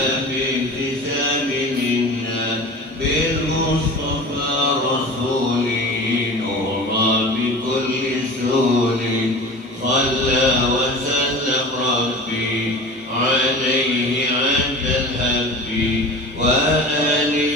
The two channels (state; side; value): normal; both; correlation 0.36